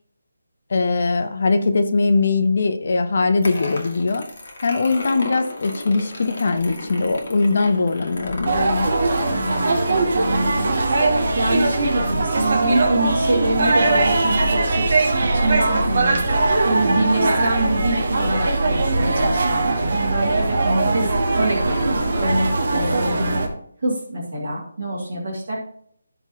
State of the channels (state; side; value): inverted; both; correlation -0.86